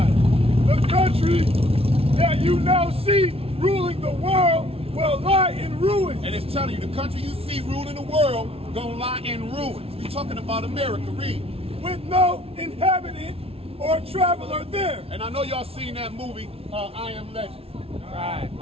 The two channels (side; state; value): left; late; 0.28 ms